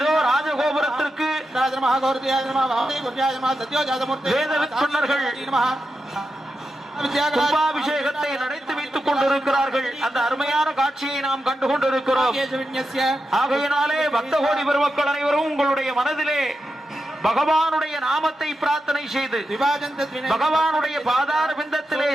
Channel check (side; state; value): both; normal; correlation 0.89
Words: ராஜகோபுரத்திற்கு வேதவித்துணர்கள் கும்பாபிஷேகத்தை நடத்தி வைத்துக் கொண்டிருக்கிறார்கள். அந்த அருமையான காட்சியை நாம் கண்டு கொண்டிருக்கிறோம். ஆகையினாலே பக்த கோடி பெருமக்கள் அனைவரும் உங்களுடைய மனதிலே பகவானுடைய நாமத்தை பிரார்த்தனை செய்து பகவானுடைய பாதார பிந்தத்திலே